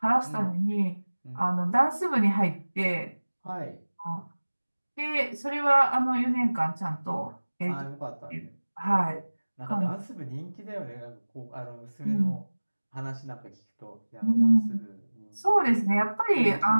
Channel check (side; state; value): both; inverted; correlation -1.00